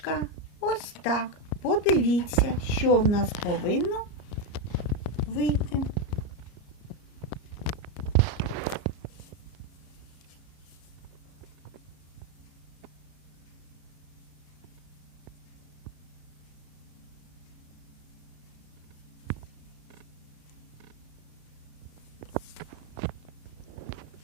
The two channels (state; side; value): late; right; 34 ms